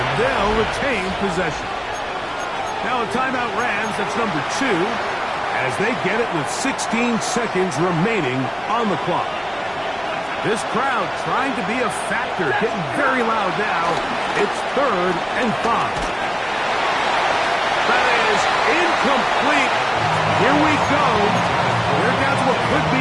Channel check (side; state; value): both; identical; correlation 1.00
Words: they'll retain possession. Now a timeout Rams, that's number 2, as they get it with 16 seconds remaining on the clock. This crowd trying to be a factor, getting very loud now. It's 3rd and 5. That is incomplete. Here we go. They're down to what could